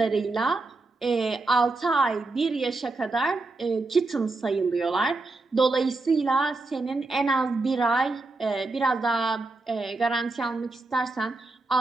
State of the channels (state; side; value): quieter; left; 3.4 dB